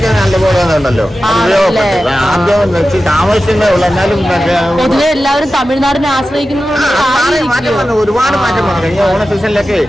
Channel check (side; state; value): both; normal; correlation 0.93